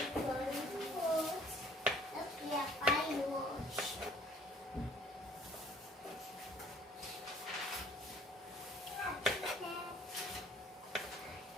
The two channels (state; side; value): normal; both; correlation 0.56